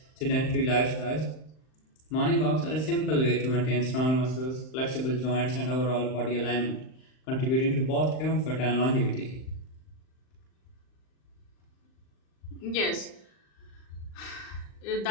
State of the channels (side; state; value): right; late; 39 ms